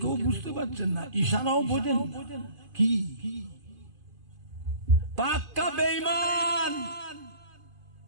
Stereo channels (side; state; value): left; late; 2.5 ms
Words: বুঝতে পারছেন না, ইশারাও বোঝেন কি পাক্কা বেঈমান।